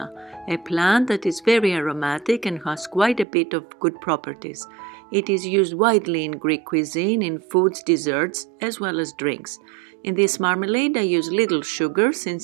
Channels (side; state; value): left; drops out; at 3.2 s